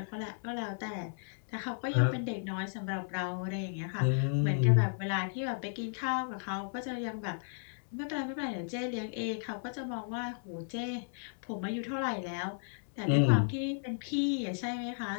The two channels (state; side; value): silent; right; 55 dB below the other